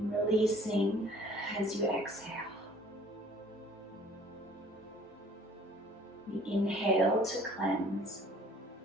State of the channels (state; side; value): normal; both; correlation 0.54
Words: releasing as you exhale. We inhale to cleanse,